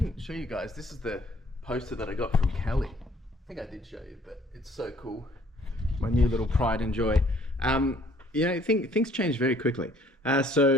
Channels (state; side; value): normal; both; correlation 0.60